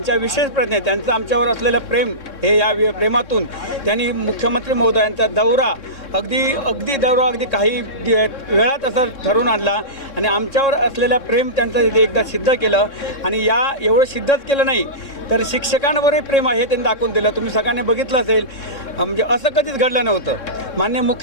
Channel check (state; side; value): late; right; 3.6 ms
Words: विशेष प्रयत्न, त्यांचं आमच्यावर असलेलं प्रेम, हे या प्रेमातून त्यांनी मुख्यमंत्री महोदयांचा दौरा अगदी काही वेळात असं ठरवून आणला आणि आमच्यावर असलेलं प्रेम त्यांचं एकदा सिद्ध केलं आणि या एवढं सिद्धच केलं नाही तर शिक्षकांवरही प्रेम आहे त्यांनी दाखवून दिलं। तुम्ही सगळ्यांनी बघितलं असेल, म्हणजे असं कधीच घडलं नव्हतं। माननीय